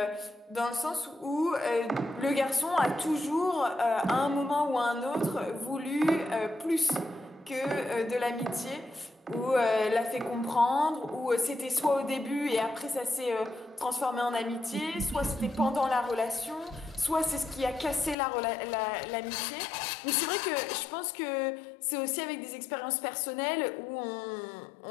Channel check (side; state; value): right; drops out; at 18.2 s